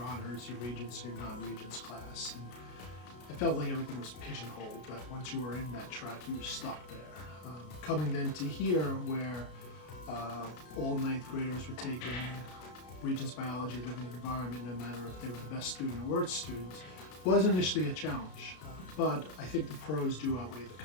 your regents, your non-regents class. And I felt like everything was pigeonholed, but once you were in that track, you were stuck there. Coming then to here, where all ninth graders were taking Regents Biology, Living Environment, no matter if they were the best student or worst students, was initially a challenge. But I think the pros do outweigh the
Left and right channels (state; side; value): late; right; 33 ms